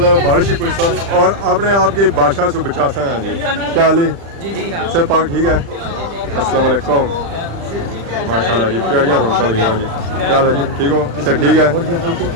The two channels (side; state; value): left; late; 35 ms